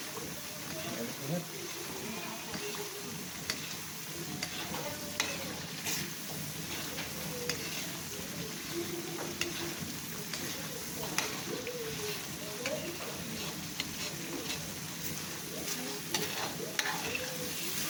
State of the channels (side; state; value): both; identical; correlation 1.00